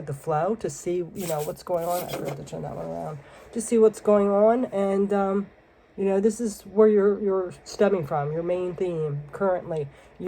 the flow to see, what's going on. I forgot to turn that one around. To see what's going on, and this is where you're stemming from. Your main theme currently,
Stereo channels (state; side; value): identical; both; correlation 1.00